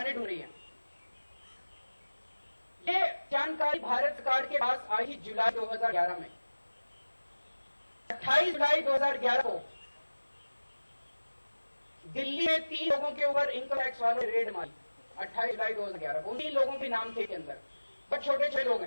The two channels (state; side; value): inverted; both; correlation -1.00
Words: ढूंढ रही है। ये जानकारी भारत सरकार के पास आई जुलाई 2011 में। 28 जुलाई 2011 को दिल्ली में 3 लोगों के ऊपर इनकम टैक्स वालों ने रेड मारी। 28 जुलाई 2011 को उन 3 लोगों के नाम थे के अंदर, बहुत छोटे छोटे लोग